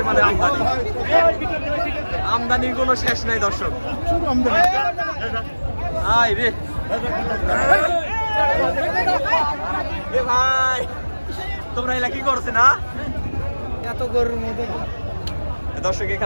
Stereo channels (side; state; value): both; inverted; correlation -1.00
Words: আমদানি, আমদানির কোনো শেষ নাই দর্শক। আয় রে ভাই, তোমরা এলা কি করছে না? এত গরুর মধ্যে দর্শক,